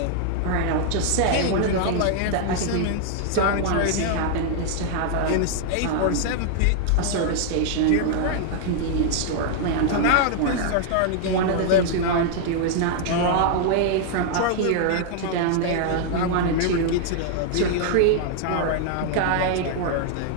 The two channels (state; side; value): different; both; correlation -0.01